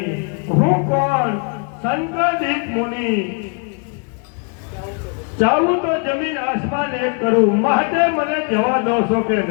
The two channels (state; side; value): quieter; right; 39.0 dB